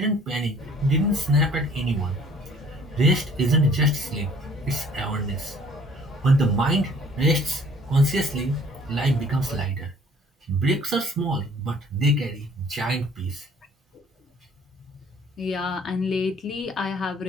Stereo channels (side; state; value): both; normal; correlation 0.55